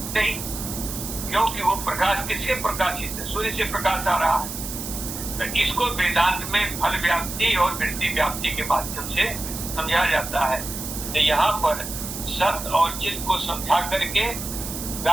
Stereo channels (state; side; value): noise; right; hiss, 7 dB below the sound